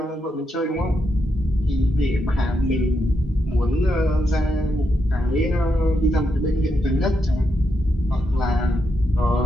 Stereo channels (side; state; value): both; normal; correlation 0.82